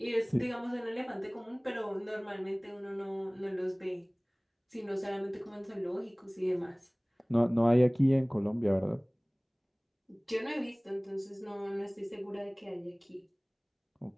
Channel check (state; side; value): identical; both; correlation 1.00